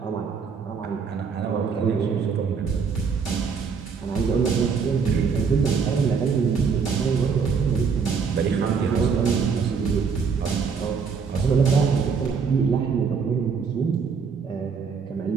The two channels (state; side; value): quieter; left; 5.7 dB